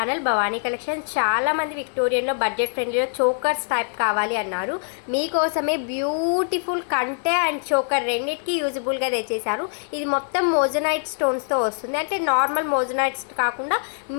Bhavani collection. చాలామంది విక్టోరియన్లో బడ్జెట్ ఫ్రెండ్లీలో చోకర్స్ టైప్ కావాలి అన్నారు. మీకోసమే బ్యూటిఫుల్ కంటే అండ్ చోకర్ రెండింటికి యూజబుల్గా తెచ్చేసారు. ఇది మొత్తం మోజనైట్ స్టోన్స్తో వస్తుంది. అంటే నార్మల్ మోజనైట్స్ కాకుండా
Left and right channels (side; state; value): right; silent; 63 dB below the other